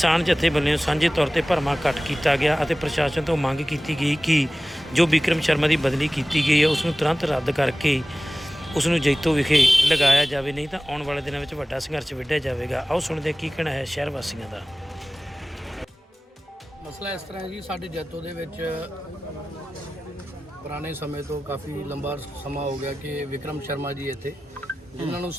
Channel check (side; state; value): both; normal; correlation 0.97